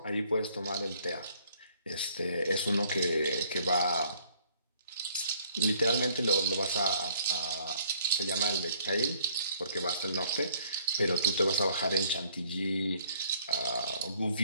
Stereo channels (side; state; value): both; inverted; correlation -0.61